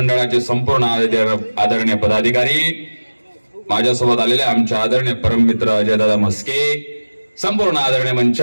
संपूर्ण आदरणीय पदाधिकारी, माझ्यासोबत आलेले आमचे आदरणीय परममित्र अजयदादा मस्के, संपूर्ण आदरणीय मंच,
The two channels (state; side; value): inverted; both; correlation -1.00